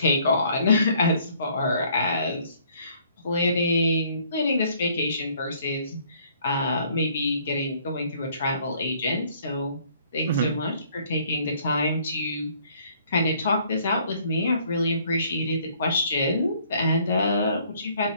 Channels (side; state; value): both; inverted; correlation -0.62